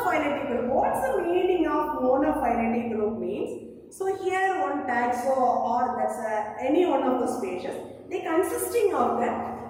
group. What's the meaning of monophyletic group means? So here one taxo or that's any one of the species, they consisting of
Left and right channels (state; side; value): identical; both; correlation 1.00